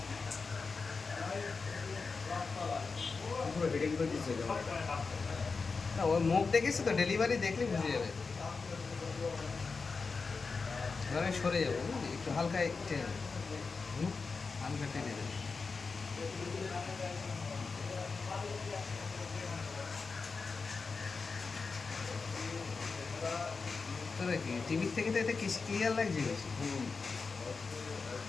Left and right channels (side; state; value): right; quieter; 4.6 dB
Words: পুরো হিডিং করে দিচ্ছে ক্যামেরাটা। না, ওর মুখ দেখেছি তো, ডেলিভারি দেখলে বুঝে যাবে। এবার আমি সরে যাবো, বুঝলি, একটু হালকা টেনে দেবো। হালকা টেনে দেবো। তোরা কি টিভির থেকে তো এটা ক্লিয়ার লাগছে বেশি।